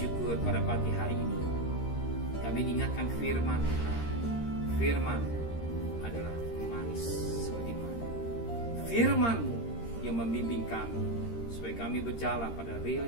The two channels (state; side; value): late; right; 13 ms